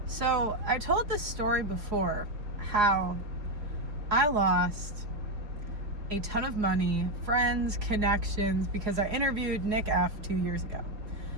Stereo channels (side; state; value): left; late; 4.8 ms